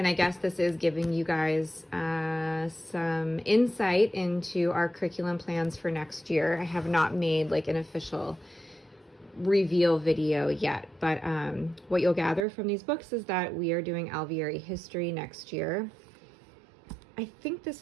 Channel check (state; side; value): drops out; left; at 12.5 s